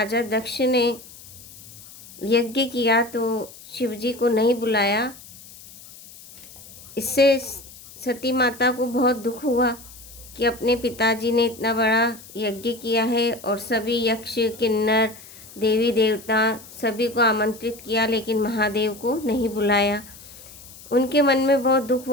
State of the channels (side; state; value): left; noise; hiss, 19 dB below the sound